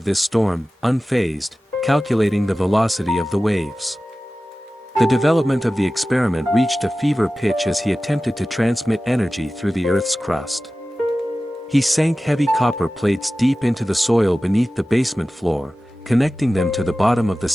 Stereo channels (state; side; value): normal; both; correlation 0.96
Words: this storm, unfazed, calculating the velocity of the waves. The development of the experiment reached a fever pitch as he attempted to transmit energy through the Earth's crust. He sank heavy copper plates deep into the soil beneath the basement floor, connecting them to the bottom of the